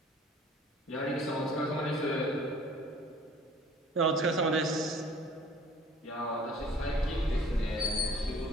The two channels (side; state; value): both; normal; correlation 0.51